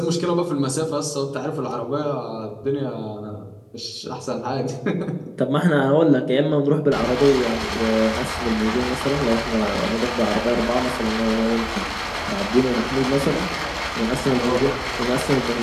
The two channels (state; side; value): identical; both; correlation 1.00